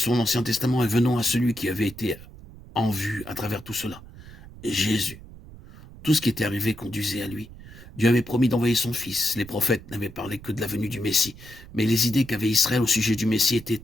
l'Ancien Testament et venons à celui qui avait été en vue à travers tout cela. Jésus. Tout ce qui était arrivé conduisait à lui. Dieu avait promis d'envoyer son fils. Les prophètes n'avaient parlé que de la venue du Messie. Mais les idées qu'avait Israël au sujet du Messie étaient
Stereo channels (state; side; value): noise; right; rumble, 18 dB below the sound